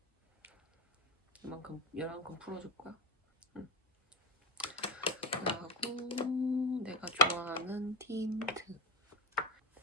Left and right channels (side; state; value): both; normal; correlation 0.16